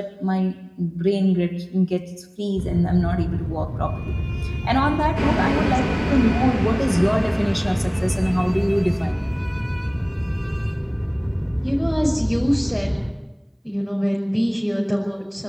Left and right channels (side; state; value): both; identical; correlation 1.00